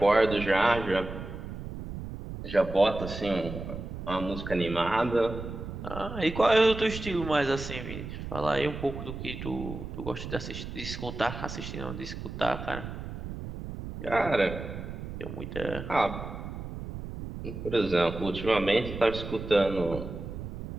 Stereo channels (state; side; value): noise; right; rumble, 8 dB below the sound